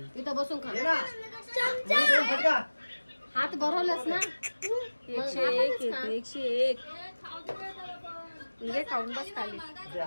इथं बसून खा. ये ना. मी देऊ फटका. हात भरवलंस ना. 101 येते 101 म्हणजे खाऊन बस खाली दे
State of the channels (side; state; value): both; inverted; correlation -1.00